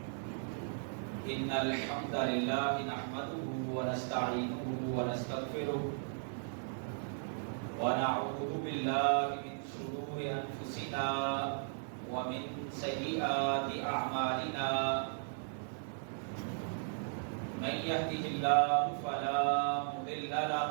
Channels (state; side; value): silent; left; digital silence